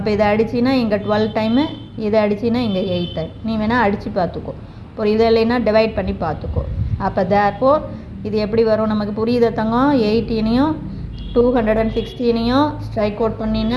இதை அடிச்சின்னா இங்கே 12 டைமு, இதை அடிச்சின்னா இங்கே 8 டைம். நீ வேணால் அடித்து பார்த்துக்கோ. அப்புறம் இதை இல்லைன்னா டிவைட் பண்ணி பார்த்துக்கோ. அப்போ தேர்ஃபோர் இது எப்படி வரும் நமக்கு புரியுத தங்கம்? 18ஐயும் 216ஐயும் ஸ்ட்ரைக் அவுட்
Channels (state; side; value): identical; both; correlation 1.00